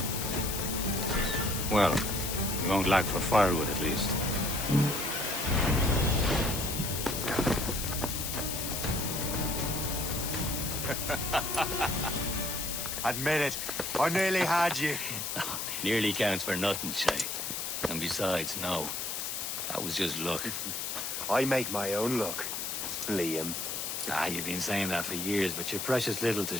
Well, we won't lack for firewood at least. Admit it, I nearly had you. Nearly counts for nothing, Shay. And besides, no. That was just luck. I make my own luck, Liam. You've been saying that for years, but you've precious little to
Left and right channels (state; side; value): noise; left; hiss, 3 dB below the sound